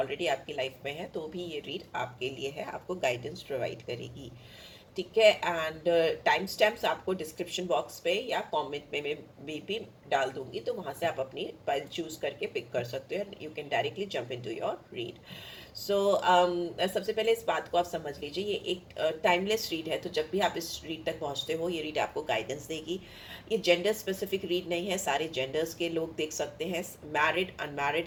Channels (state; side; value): identical; both; correlation 1.00